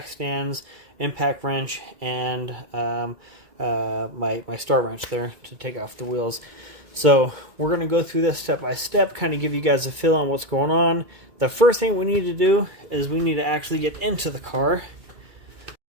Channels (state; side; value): late; left; 2.2 ms